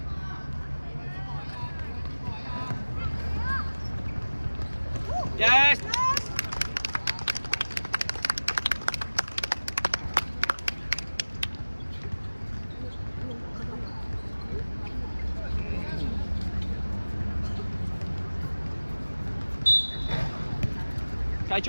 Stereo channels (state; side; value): inverted; both; correlation -1.00